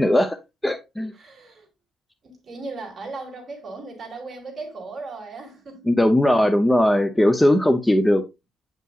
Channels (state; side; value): normal; both; correlation 0.95